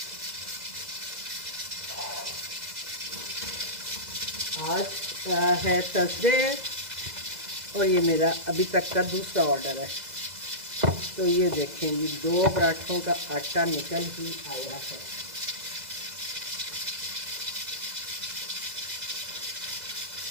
आज है थर्सडे और ये मेरा अभी तक का दूसरा ऑर्डर है। तो ये देखें जी 2 पराठों का आटा निकल ही आया है।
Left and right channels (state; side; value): late; left; 2.0 ms